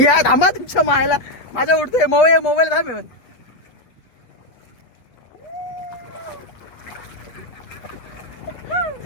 थांबा तुमच्या मायला. माझ्या उठतोय मोबाईल थांब.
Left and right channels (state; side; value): late; right; 8.1 ms